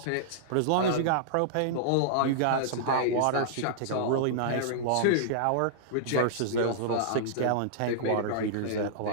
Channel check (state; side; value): different; both; correlation -0.02